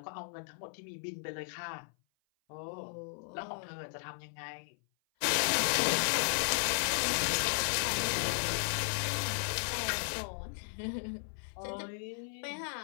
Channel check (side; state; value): right; silent; 54 dB below the other